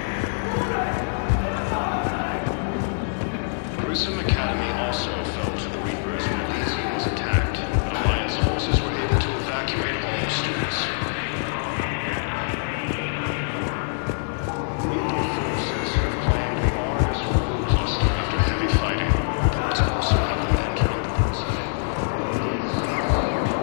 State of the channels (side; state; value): right; silent; digital silence